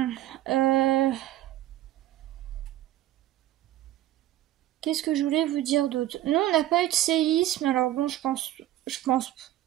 qu'est-ce que je voulais vous dire d'autre? Non, on n'a pas eu de séisme, alors bon, je pense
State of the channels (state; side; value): quieter; left; 13.8 dB